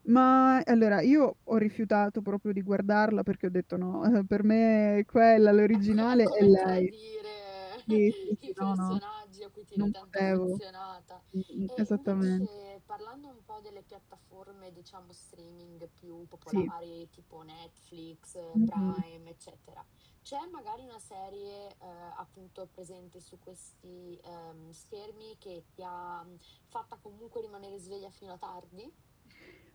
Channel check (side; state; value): both; identical; correlation 1.00